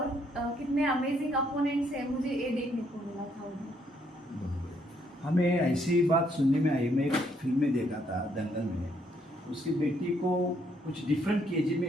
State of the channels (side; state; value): both; normal; correlation 0.71